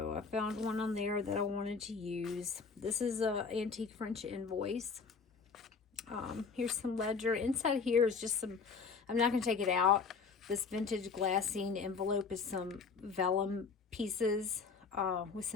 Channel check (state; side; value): quieter; right; 5.2 dB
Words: I found one on there that I wanted to use. This is a antique French invoice. Here's some ledger. Inside here is just some, I'm not going to take it out. This vintage glassine envelope is some vellum pieces with